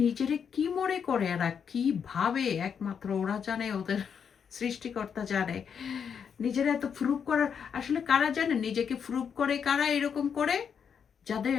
নিজেরে কি মনে করে এরা, কি ভাবে একমাত্র ওরা জানে, ওদের সৃষ্টিকর্তা জানে। নিজেরা এত প্রুভ করার, আসলে কারা জানে নিজেকে প্রুভ করে, কারা এরকম করে?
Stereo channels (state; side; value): quieter; right; 7.2 dB